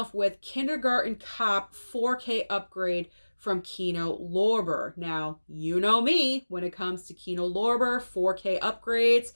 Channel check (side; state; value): both; inverted; correlation -1.00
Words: with Kindergarten Cop 4K upgrade from Kino Lorber. Now, you know me, when it comes to Kino Lorber 4K upgrades,